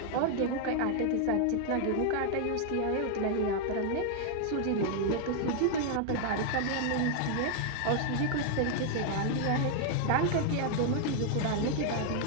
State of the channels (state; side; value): different; both; correlation 0.00